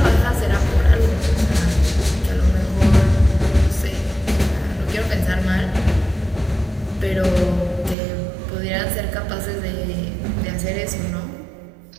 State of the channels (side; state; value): left; drops out; at 8.0 s